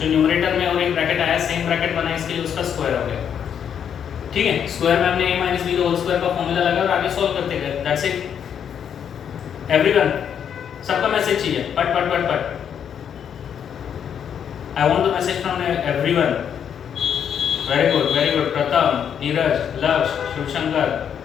न्यूमरेटर में और एक ब्रैकेट आया, सेम ब्रैकेट बना, इसके लिए उसका स्क्वायर हो गया। ठीक है, स्क्वायर में हमने a minus b whole square का फॉर्मूला लगा और आगे सॉल्व करते गए। That's it everyone. सबका मैसेज चाहिए, पट पट पट पट। I want the message from everyone. Very good Pratham, Neeraj, लक्ष्य, शिवशंकर,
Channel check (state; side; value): quieter; right; 8.3 dB